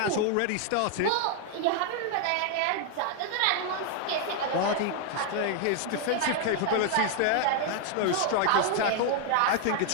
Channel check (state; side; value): different; both; correlation 0.00